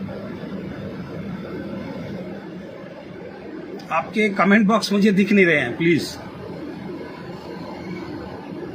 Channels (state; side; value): identical; both; correlation 1.00